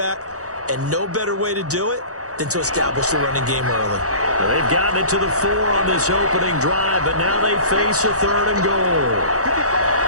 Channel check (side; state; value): left; late; 0.66 ms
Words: and no better way to do it than to establish the running game early. Well, they've gotten it to the 4 on this opening drive, but now they face a third and goal.